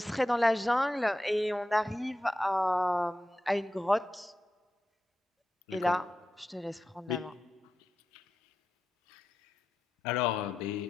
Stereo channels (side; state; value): both; normal; correlation 0.90